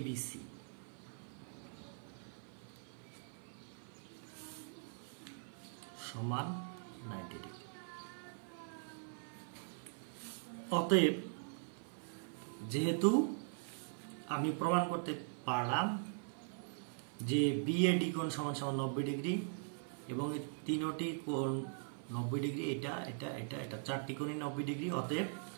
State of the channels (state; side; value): silent; left; 50 dB below the other